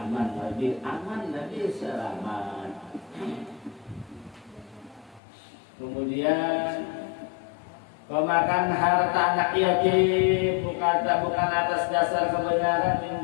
lebih selamat. Kemudian pemakan harta anak yatim bukan atas dasar kebenaran min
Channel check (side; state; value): right; drops out; at 5.2 s